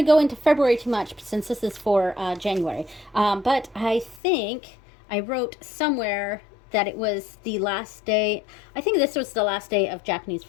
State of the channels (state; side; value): drops out; right; at 4.2 s